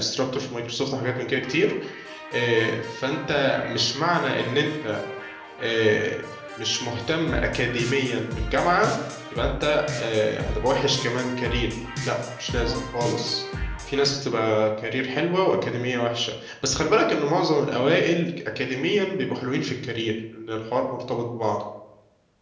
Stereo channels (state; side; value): identical; both; correlation 1.00